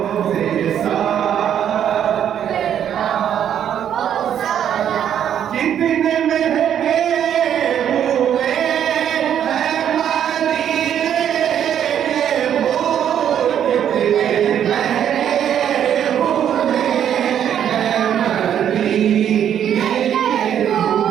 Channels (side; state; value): left; quieter; 9.5 dB